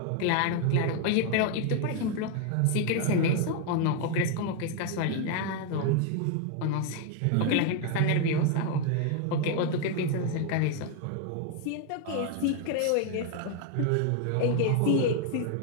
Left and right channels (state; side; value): different; both; correlation 0.01